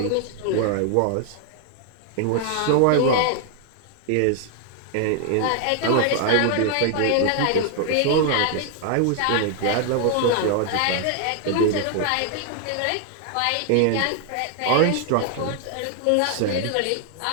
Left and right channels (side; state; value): both; different; correlation 0.00